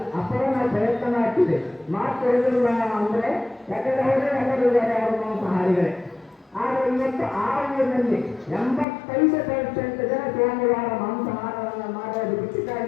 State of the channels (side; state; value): right; drops out; at 8.8 s